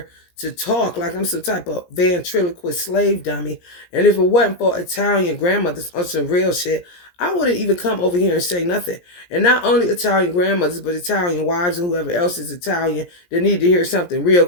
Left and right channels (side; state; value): right; late; 17 ms